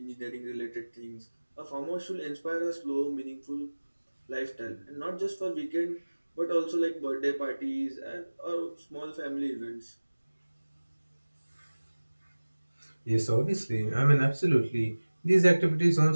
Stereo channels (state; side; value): inverted; both; correlation -1.00